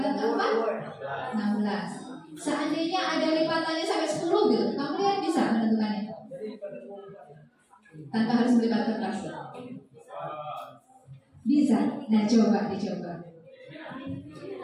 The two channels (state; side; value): identical; both; correlation 1.00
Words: keempat 16. Seandainya ada lipatannya sampai 10 gitu, kamu lihat bisa menentukannya tanpa harus melipat kertas. Bisa. Nah dicoba.